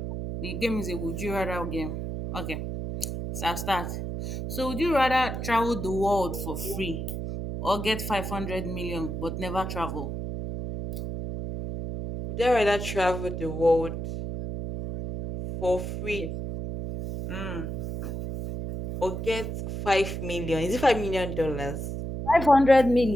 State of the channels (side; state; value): right; noise; hum, 5 dB below the sound